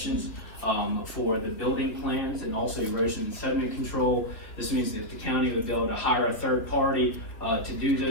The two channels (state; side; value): late; right; 3.1 ms